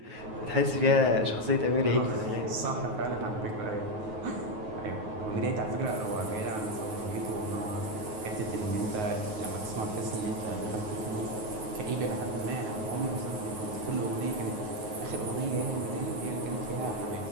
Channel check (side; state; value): left; late; 9.4 ms